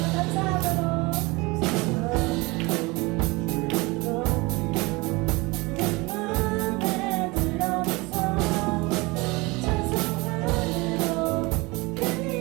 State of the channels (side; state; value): left; quieter; 24.4 dB